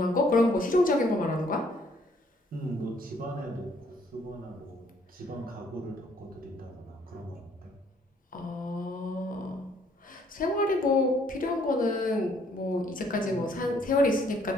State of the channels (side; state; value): both; normal; correlation 0.64